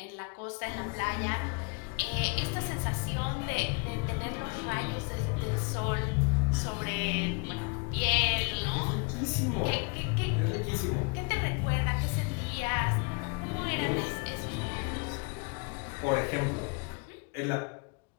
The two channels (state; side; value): quieter; right; 32.9 dB